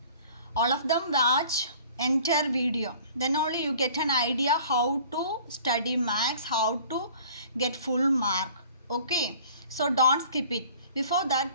All of them watch entire video, then only you get an idea how to study maths, how to get full mark. Okay, so don't skip it. Before that,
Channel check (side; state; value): both; inverted; correlation -0.49